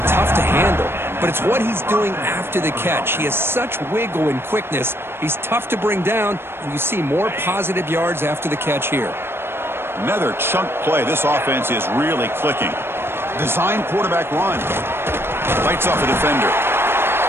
tough to handle, but it's what he's doing after the catch. He has such wiggle and quickness. He's tough to bring down, and you see more positive yards after the catch here. Another chunk play. This offense is really clicking. Design quarterback run. Lights off a defender.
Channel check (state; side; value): late; left; 0.11 ms